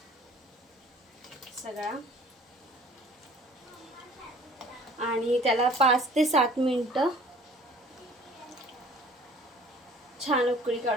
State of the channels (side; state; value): both; normal; correlation 0.50